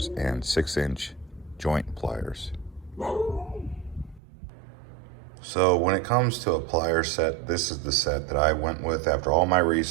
and 6-inch joint pliers. So when it comes to a plier set, this is the set that I went with after all my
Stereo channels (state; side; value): drops out; left; at 4.2 s